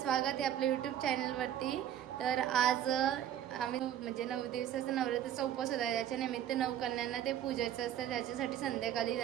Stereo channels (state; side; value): quieter; left; 10.9 dB